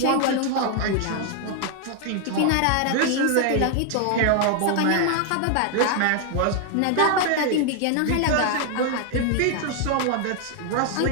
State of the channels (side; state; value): both; different; correlation 0.00